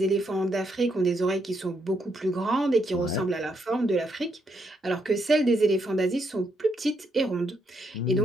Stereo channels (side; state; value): both; normal; correlation 0.77